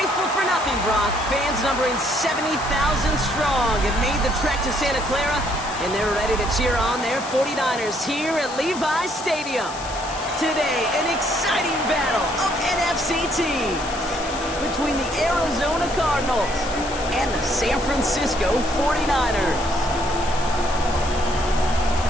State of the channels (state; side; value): noise; left; hiss, 13 dB below the sound